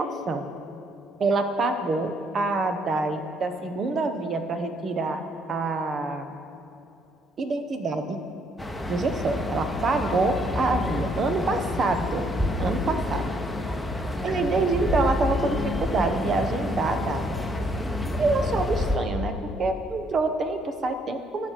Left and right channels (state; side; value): normal; both; correlation 0.69